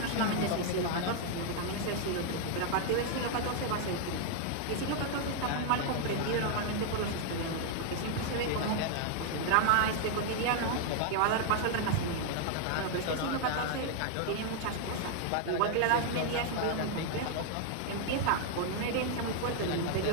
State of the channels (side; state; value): both; different; correlation 0.00